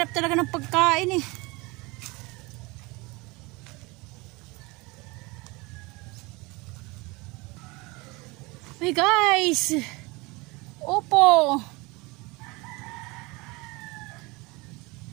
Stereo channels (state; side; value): quieter; left; 25.0 dB